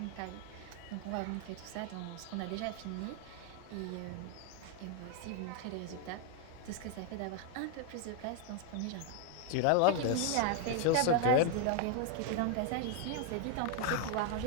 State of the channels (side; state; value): both; different; correlation 0.00